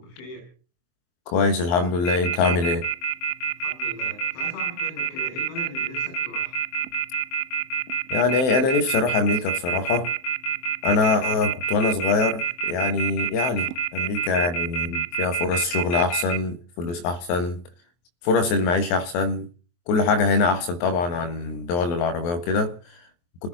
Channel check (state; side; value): late; right; 23 ms